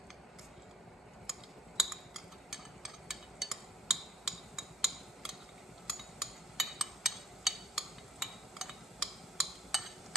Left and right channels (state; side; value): normal; both; correlation 0.63